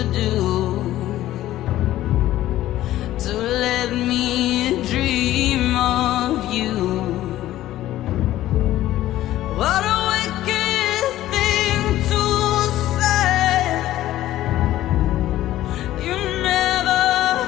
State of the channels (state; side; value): quieter; right; 14.3 dB